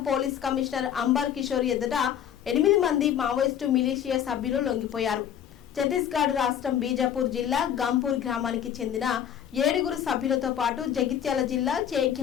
పోలీస్ కమిషనర్ అంబర్ కిషోర్ ఎదుట 8 మంది మావోయిస్టు మిలిషియా సభ్యులు లొంగిపోయారు. ఛత్తీస్గఢ్ రాష్ట్రం బీజాపూర్ జిల్లా గంపూర్ గ్రామానికి చెందిన 7 సభ్యులతో పాటు జగిత్యాల జిల్లా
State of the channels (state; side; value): quieter; right; 9.6 dB